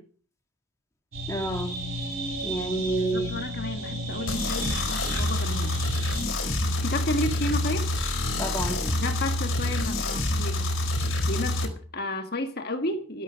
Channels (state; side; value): normal; both; correlation 0.56